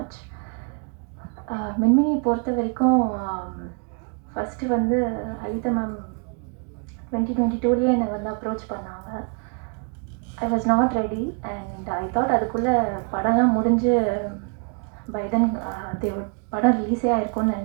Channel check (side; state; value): left; quieter; 39.1 dB